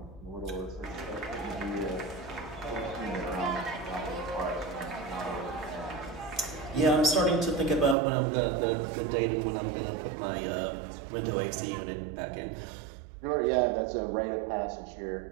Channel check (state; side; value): drops out; left; at 8.0 s